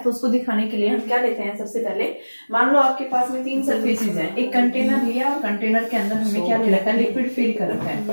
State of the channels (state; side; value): inverted; both; correlation -1.00